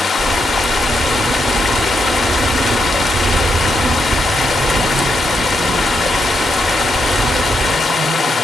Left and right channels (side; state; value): both; normal; correlation 0.81